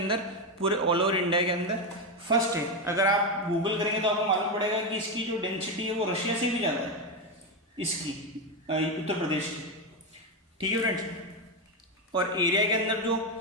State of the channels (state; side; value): normal; both; correlation 0.09